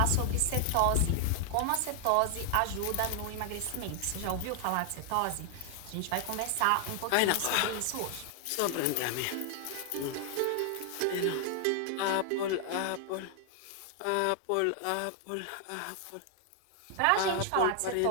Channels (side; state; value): both; different; correlation 0.00